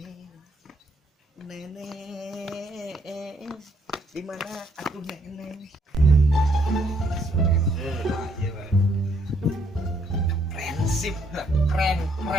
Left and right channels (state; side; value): normal; both; correlation 0.70